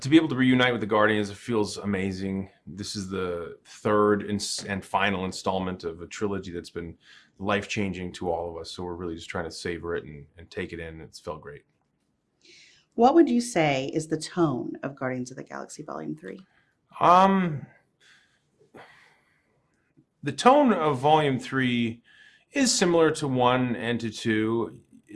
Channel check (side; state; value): both; identical; correlation 1.00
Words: be able to reunite with the Guardians. It feels amazing. This is the third and final installment of a trilogy that's been life-changing to all of us. So we're really just trying to savor it and take it in. It's felt great. What would you say is the tone of Guardians of the Galaxy Volume 3? Um, the tone of Volume 3 is similar to 1 and to 2.